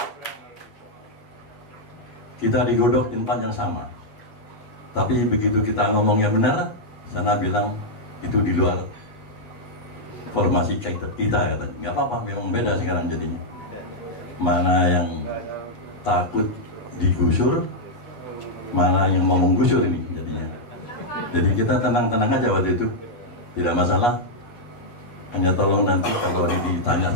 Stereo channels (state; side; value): late; right; 8.4 ms